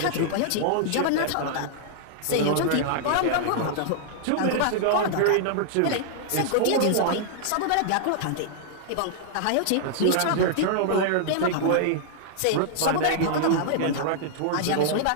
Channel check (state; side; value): different; both; correlation -0.01